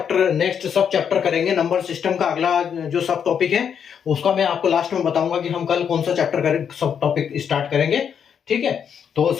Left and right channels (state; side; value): quieter; right; 7.7 dB